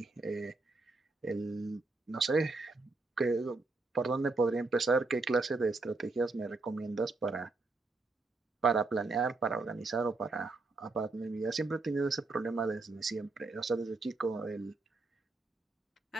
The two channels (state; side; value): quieter; left; 3.5 dB